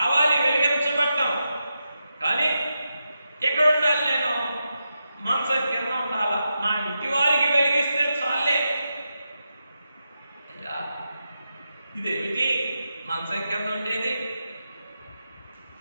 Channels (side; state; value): both; inverted; correlation -0.87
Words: వెలిగించబట్టం. కానీ ఎక్కడ ఉండాలి నేను? మంచం కింద ఉండాలా? నా ఇంటి వారికి వెలిగిస్తే చాలే. అయ్యా ఇదేమిటి మంచం కింద ఉండేది?